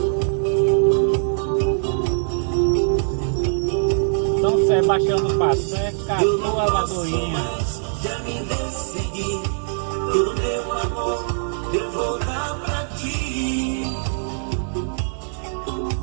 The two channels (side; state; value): left; silent; 64 dB below the other